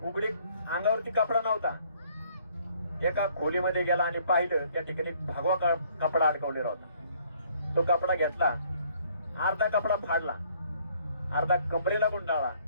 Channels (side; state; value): both; inverted; correlation -0.62